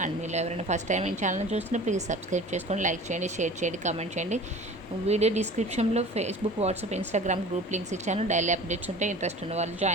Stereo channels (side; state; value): both; normal; correlation 0.41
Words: అండ్ మీరు ఎవరైనా ఫస్ట్ టైం ఈ ఛానల్ చూస్తున్నా ప్లీజ్ సబ్స్క్రైబ్ చేసుకోండి, లైక్ చేయండి, షేర్ చేయండి, కామెంట్ చేయండి. వీడియో డిస్క్రిప్షన్లో Facebook, WhatsApp, Instagram group links ఇచ్చాను. డైలీ అప్డేట్స్ ఉంటే ఇంట్రెస్ట్ ఉన్న వాళ్ళు